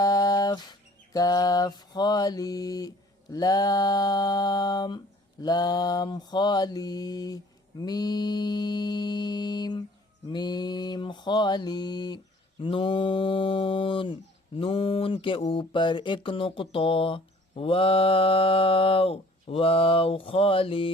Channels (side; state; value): both; normal; correlation 0.53